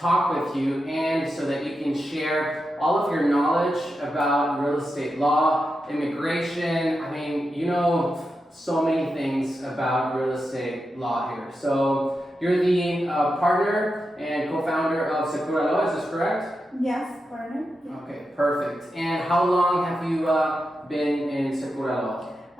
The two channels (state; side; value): normal; both; correlation 0.88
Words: with you and so that you can share all of your knowledge about real estate law, immigration. I mean, you know so many things about real estate law here. So you're the partner and co-founder of Sekuralaw, is this correct? Yes, partner. Okay, perfect. And how long have you been in Sekuralaw?